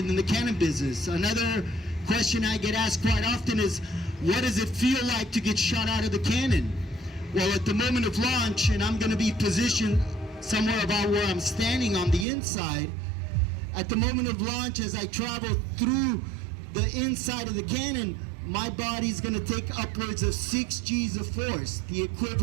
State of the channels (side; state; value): left; drops out; at 12.2 s